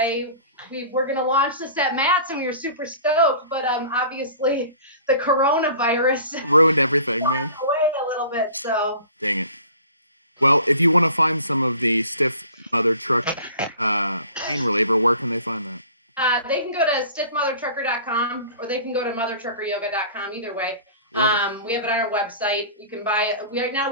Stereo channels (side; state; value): both; inverted; correlation -0.46